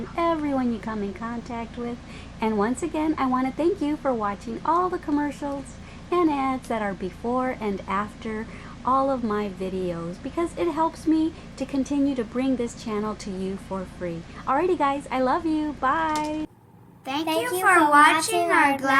everyone you come in contact with. And once again, I want to thank you for watching all the commercials and ads that are before and after all of my videos, because it helps me to continue to bring this channel to you for free. Alrighty guys, I love you. Bye. Thank you for watching our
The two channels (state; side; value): identical; both; correlation 1.00